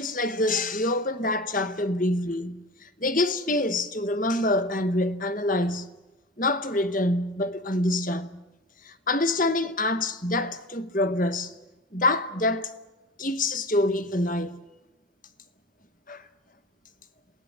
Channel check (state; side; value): normal; both; correlation 0.33